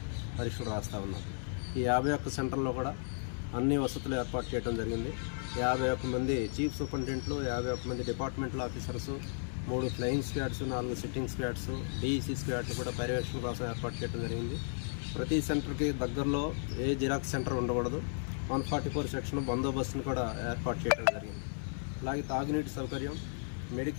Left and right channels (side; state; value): right; silent; 55 dB below the other